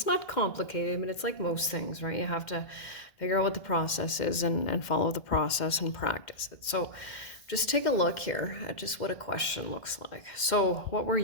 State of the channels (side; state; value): right; late; 2.1 ms